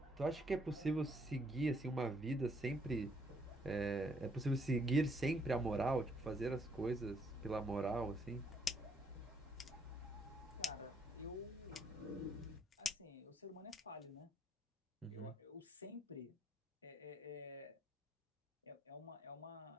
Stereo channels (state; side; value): normal; both; correlation 0.70